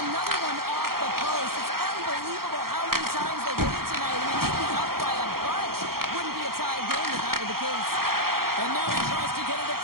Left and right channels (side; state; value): left; late; 0.93 ms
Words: another one off the post. It's unbelievable how many times they did it tonight. I mean, they'd be up by a bunch. Wouldn't be a tie game if that were the case. And now he tries to get it